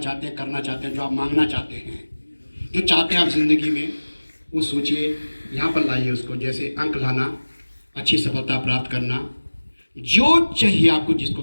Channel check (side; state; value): both; inverted; correlation -1.00